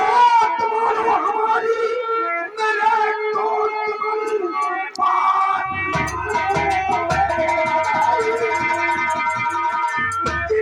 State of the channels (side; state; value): both; identical; correlation 1.00